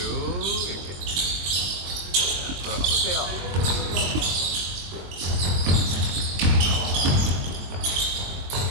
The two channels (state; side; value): late; left; 22 ms